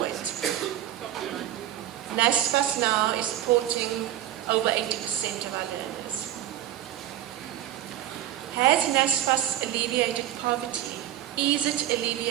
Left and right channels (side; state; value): left; quieter; 12.4 dB